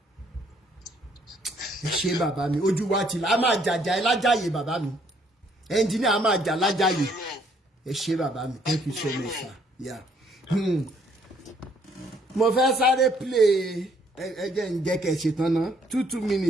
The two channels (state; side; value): normal; both; correlation 0.66